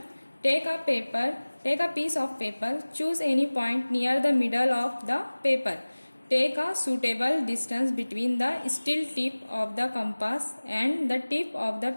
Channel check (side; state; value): both; inverted; correlation -1.00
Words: Take a piece of paper, choose any point near the middle of the paper, take a suitable distance between the steel tip of the compass and the tip of the